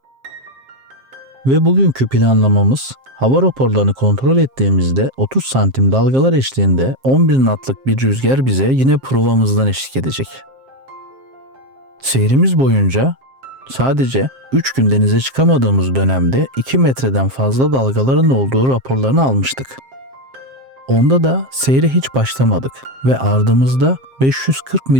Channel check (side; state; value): left; late; 7.6 ms